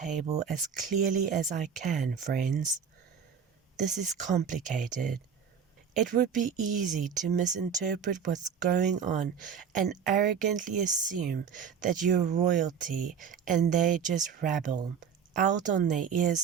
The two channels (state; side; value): quieter; left; 7.1 dB